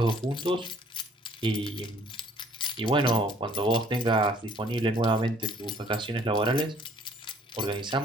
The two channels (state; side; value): normal; both; correlation 0.58